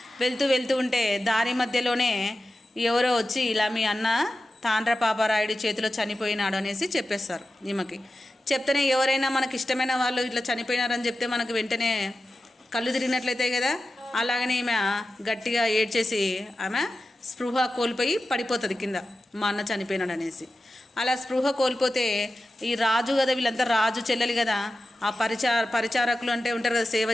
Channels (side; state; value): both; normal; correlation 0.93